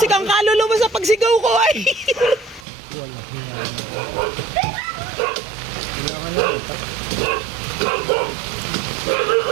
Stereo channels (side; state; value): left; drops out; at 2.7 s